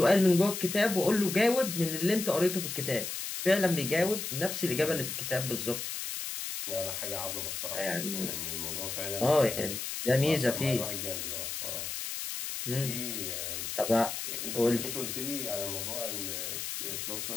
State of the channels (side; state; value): left; noise; hiss, 5 dB below the sound